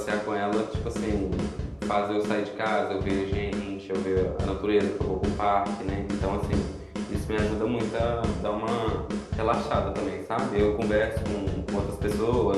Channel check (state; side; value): identical; both; correlation 1.00